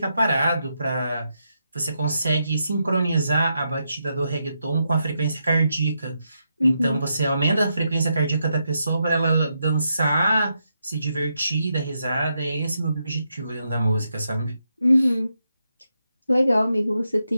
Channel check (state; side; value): inverted; both; correlation -0.83